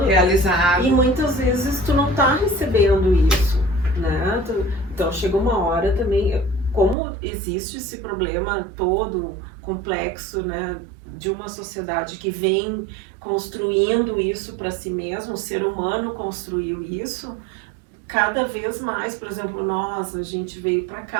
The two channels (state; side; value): drops out; left; at 7.0 s